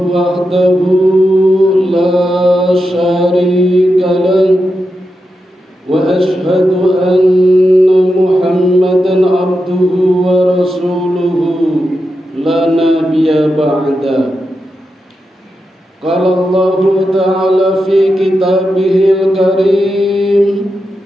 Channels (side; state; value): both; normal; correlation 0.88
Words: wahdahu la syarika lahu wa asyhadu anna Muhammadan abduhu wa rasuluhu la nabiyya ba'da. Qala Allah ta'ala fi kitabihil karim.